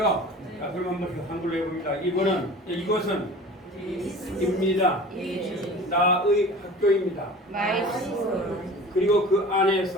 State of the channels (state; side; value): normal; both; correlation 0.40